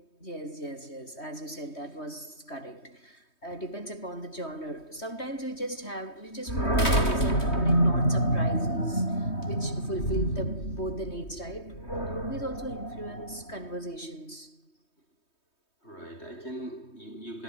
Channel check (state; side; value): late; right; 3.2 ms